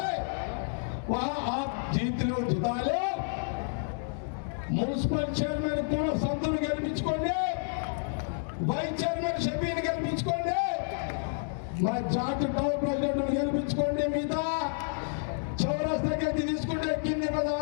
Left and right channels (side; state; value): right; silent; digital silence